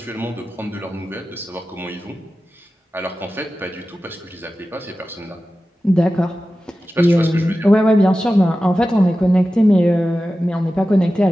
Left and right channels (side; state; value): both; normal; correlation 0.94